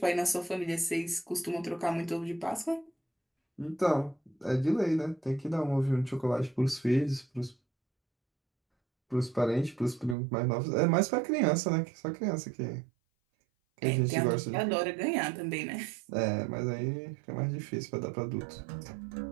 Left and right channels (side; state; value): left; drops out; at 10.2 s